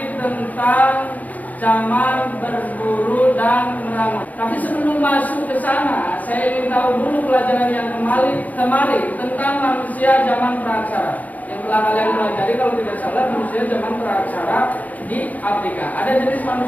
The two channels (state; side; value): late; right; 0.077 ms